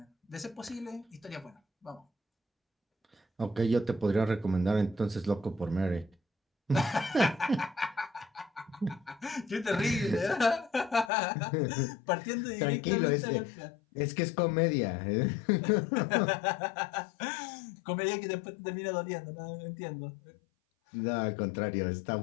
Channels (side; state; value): right; drops out; at 11.1 s